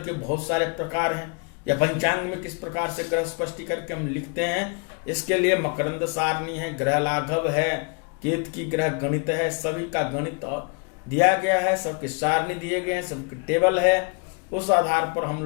के बहुत सारे प्रकार हैं, या पंचांग में किस प्रकार से ग्रह स्पष्टीकरण के हम लिखते हैं, इसके लिए मकरंद सारणी है, ग्रह लाघव है, केत की ग्रह गणित है, सभी का गणित दिया गया है, सबके सारणी दिए गए हैं, सबके टेबल है। उस आधार पर हम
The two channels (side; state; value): right; quieter; 35.0 dB